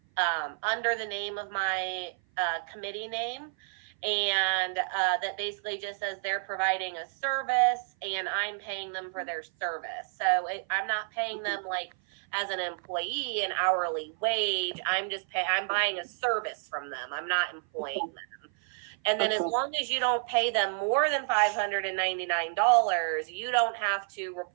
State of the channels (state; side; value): silent; left; 56 dB below the other